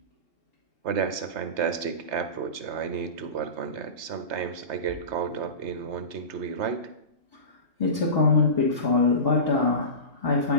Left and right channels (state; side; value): late; left; 3.3 ms